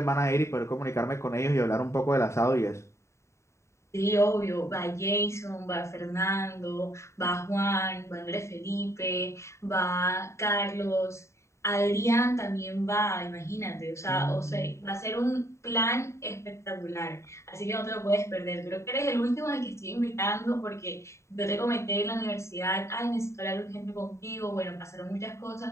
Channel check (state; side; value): late; right; 0.14 ms